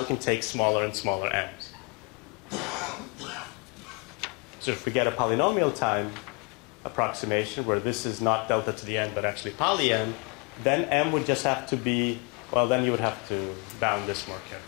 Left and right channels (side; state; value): right; quieter; 33.1 dB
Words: can take smaller and smaller m's. So if we get a polynomial time approximation where this is not delta to the n but actually poly n, then m would just have to be, well, then you would have to bound this more